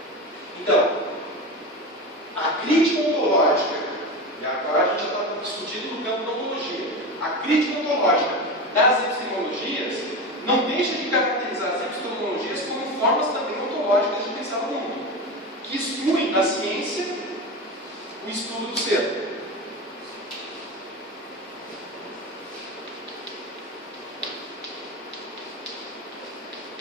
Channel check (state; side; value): normal; both; correlation 0.23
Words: Então, a crítica ontológica, e agora a gente está discutindo no campo da ontologia, a crítica ontológica das epistemologias não deixa de caracterizar as epistemologias como formas também ontológicas de pensar o mundo, que excluem da ciência o estudo do ser.